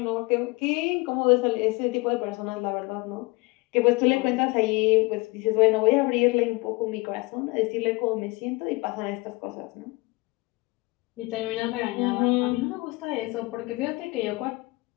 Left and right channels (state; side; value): quieter; right; 24.8 dB